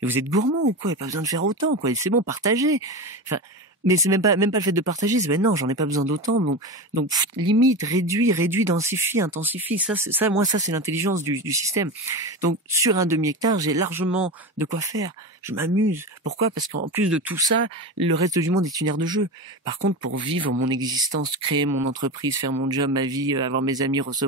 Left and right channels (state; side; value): normal; both; correlation 0.23